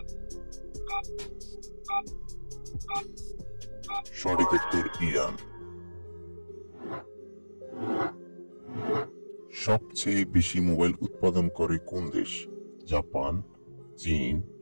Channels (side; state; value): both; inverted; correlation -1.00